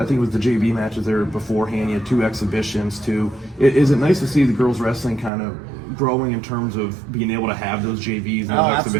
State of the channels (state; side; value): drops out; left; at 5.3 s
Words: think it was the JV matches there beforehand. You had 2 exhibitions too. Is it nice to see the girls wrestling kind of growing in terms of being able to have those JVs and those